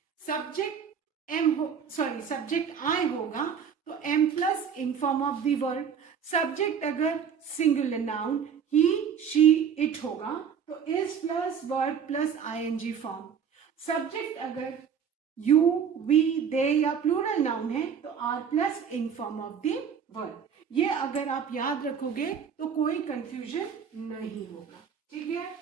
सब्जेक्ट एम हो, सॉरी सब्जेक्ट आई होगा तो am plus ing form of the verb. Subject अगर singular noun he, she, it होगा तो is plus verb plus ING form. Subject अगर यू, वी, दे या प्लूरल नाउन है तो are plus ing form of the verb. ये अगर आप याद रखोगे तो कोई कंफ्यूजन नहीं होगा. ठीक है.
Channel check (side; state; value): left; quieter; 7.3 dB